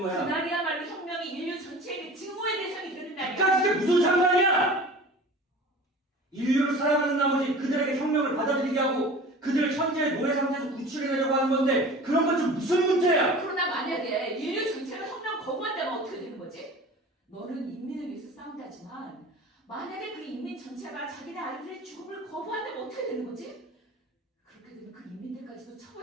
거야. 그날이야말로 혁명이 인류 전체에게 증오의 대상이 되는 날이야. 그러니까 그게 무슨 상관이야! 인류를 사랑하는 나머지 그들에게 혁명을 받아들이게 하고 그들을 현재의 노예 상태에서 구출해내려고 하는 건데 그런 건 좀 무슨 문제야! 그러나 만약에 인류 전체가 혁명 거부한다면 어떻게 되는 거지? 너는 인민을 위해서 싸운다지만 만약에 그 인민 전체가 자기네 아이들의 죽음을 거부한다면 어떻게 되는 거지? 그렇게 되면 그 인민들까지도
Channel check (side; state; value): both; normal; correlation 0.39